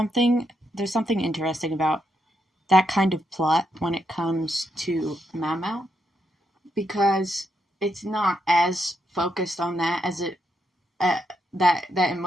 interesting about that kind of plot when it comes to Maomao, because it's not as focused on that as it that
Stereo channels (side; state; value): both; normal; correlation 0.80